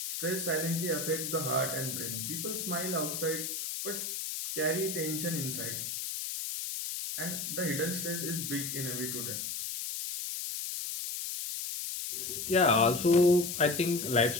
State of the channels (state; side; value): noise; left; hiss, 4 dB below the sound